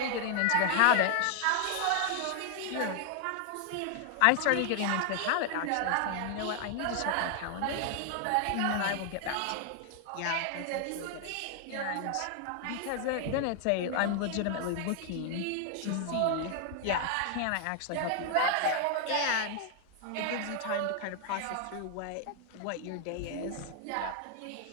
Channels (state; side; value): different; both; correlation 0.00